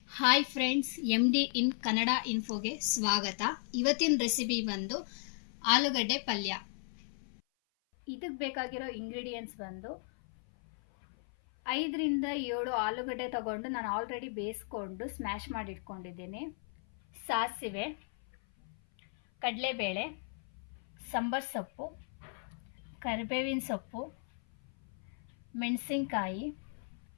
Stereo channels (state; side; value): silent; right; 54 dB below the other